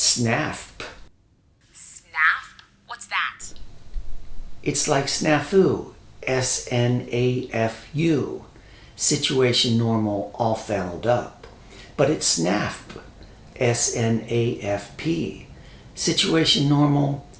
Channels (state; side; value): identical; both; correlation 1.00